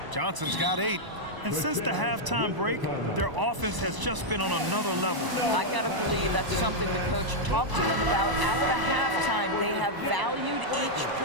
Johnson's got 8. And since the halftime break, their offense has just been on another level. I got to believe that's something the coach talked to them about at the halftime. They have valued each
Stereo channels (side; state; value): left; late; 1.0 ms